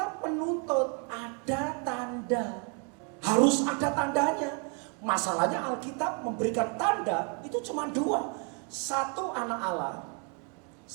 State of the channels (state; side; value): quieter; left; 37.8 dB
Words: menuntut ada tanda. Harus ada tandanya. Masalahnya Alkitab memberikan tanda itu cuma 2. 1 anak Allah,